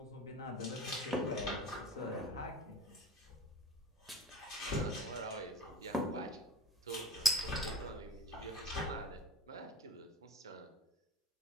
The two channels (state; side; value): normal; both; correlation 0.39